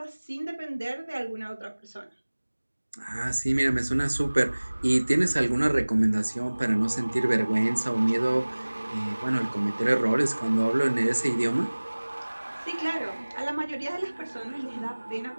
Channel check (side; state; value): both; inverted; correlation -1.00